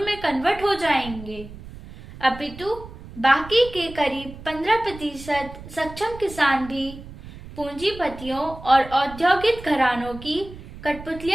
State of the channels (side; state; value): right; noise; rumble, 15 dB below the sound